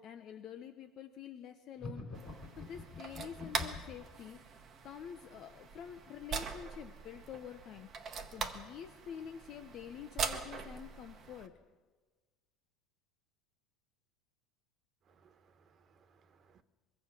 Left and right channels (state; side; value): normal; both; correlation 0.54